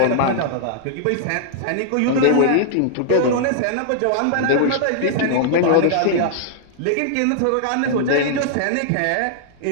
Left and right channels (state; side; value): different; both; correlation -0.01